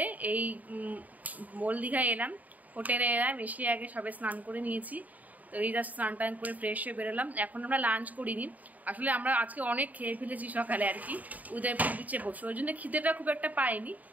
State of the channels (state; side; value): late; left; 0.076 ms